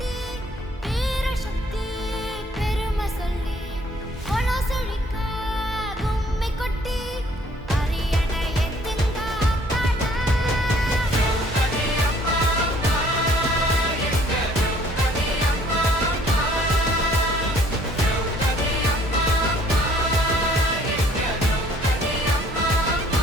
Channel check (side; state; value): both; normal; correlation 0.59